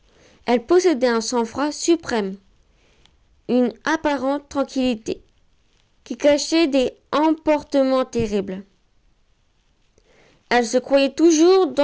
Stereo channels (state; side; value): identical; both; correlation 1.00